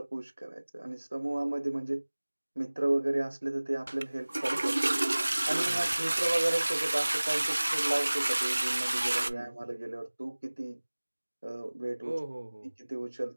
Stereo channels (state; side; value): inverted; both; correlation -1.00